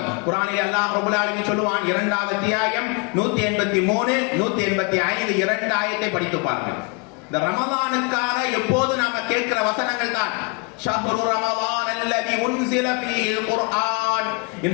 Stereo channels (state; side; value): quieter; right; 32.3 dB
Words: குர்ஆனில் அல்லாஹ் ரப்பல் ஆலமீன் சொல்லுவான், 2வது அத்தியாயம் 183 185 2 ஆயத்தை படித்து பாருங்கள். இந்த ரமலானுக்காக எப்போது நாம கேட்கிற வசனங்கள் தான் ஷஹ்ரு ரமலான் அல்லதி உன்ஸில ஃபீஹில் குர்ஆன்.